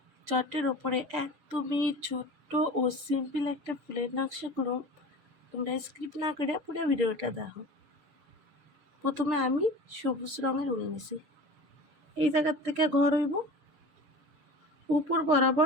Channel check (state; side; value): late; left; 7.0 ms